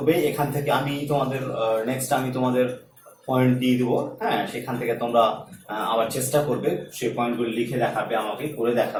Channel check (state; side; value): identical; both; correlation 1.00